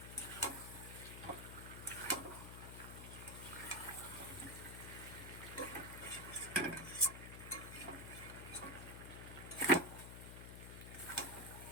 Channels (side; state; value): left; noise; hum, 9 dB below the sound